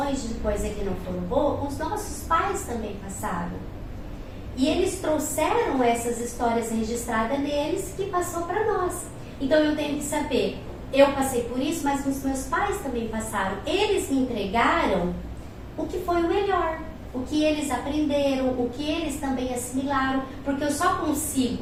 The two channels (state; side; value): identical; both; correlation 1.00